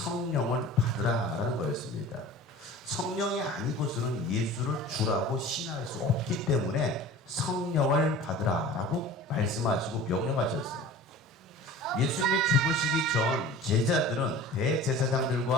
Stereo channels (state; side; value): normal; both; correlation 0.40